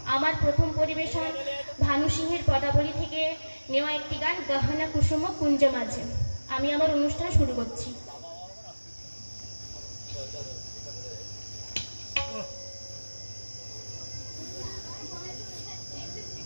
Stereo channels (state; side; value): inverted; both; correlation -1.00